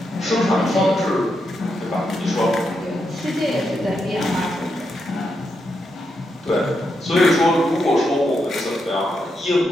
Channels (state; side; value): normal; both; correlation 0.83